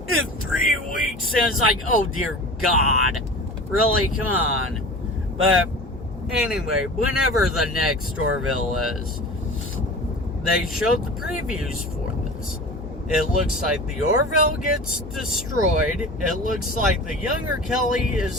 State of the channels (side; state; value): both; normal; correlation 0.36